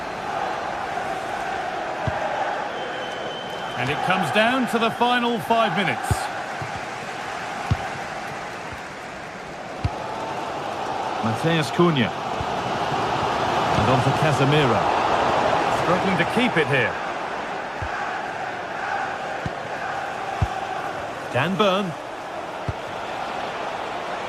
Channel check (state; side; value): identical; both; correlation 1.00